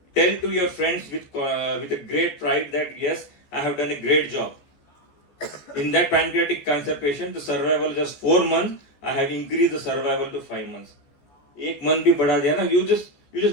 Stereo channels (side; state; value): right; late; 14 ms